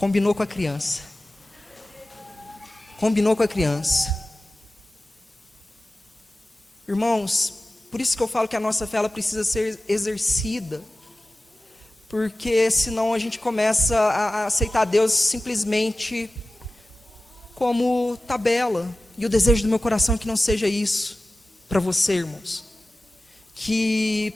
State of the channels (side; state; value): both; normal; correlation 0.96